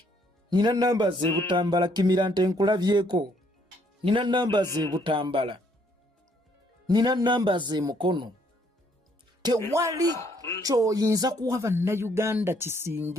nina nnamba z'ebutambala Kimirante nkulabyeko, nina nnamba z'ebutambala, nina nnamba z'emukono. Tewali ky'oyinza kuwa bannayuganda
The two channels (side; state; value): both; normal; correlation 0.67